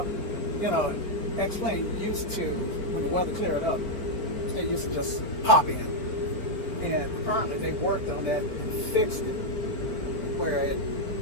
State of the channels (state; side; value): late; right; 4.4 ms